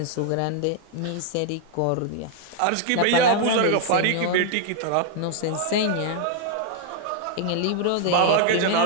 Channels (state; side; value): different; both; correlation 0.00